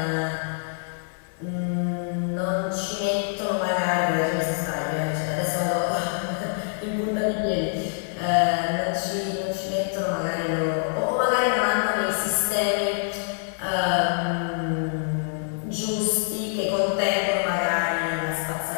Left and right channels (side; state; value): right; silent; 61 dB below the other